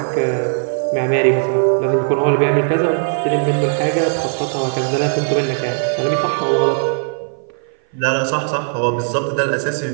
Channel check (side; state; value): left; silent; 57 dB below the other